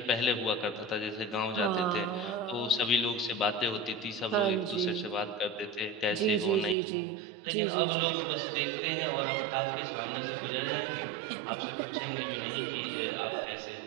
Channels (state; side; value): drops out; left; at 6.8 s